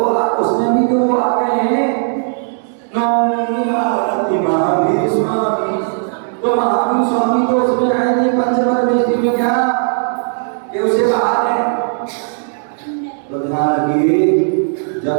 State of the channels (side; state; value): left; silent; digital silence